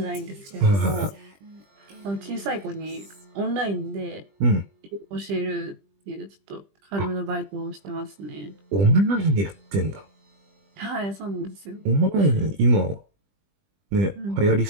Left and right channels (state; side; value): late; left; 20 ms